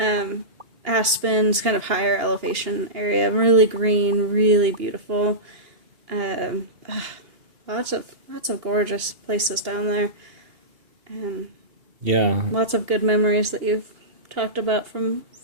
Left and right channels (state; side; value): late; left; 2.8 ms